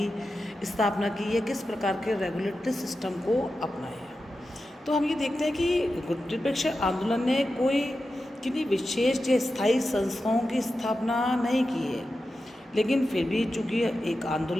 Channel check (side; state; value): both; normal; correlation 0.91